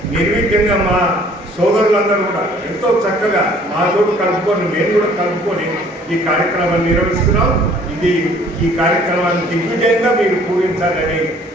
నిర్విఘ్నంగా మా సోదరులందరూ కూడా ఎంతో చక్కగా మాతోడు కలుపుకొని, మేము కూడా కలుపుకొని ఈ కార్యక్రమాన్ని నిర్వహిస్తున్నాం. ఈ కార్యక్రమాన్ని దిగ్విజయంగా మీరు పూరించాలని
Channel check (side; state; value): both; normal; correlation 0.56